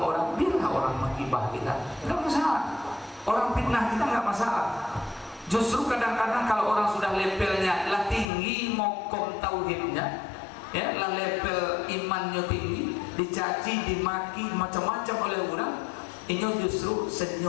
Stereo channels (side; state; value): right; drops out; at 8.2 s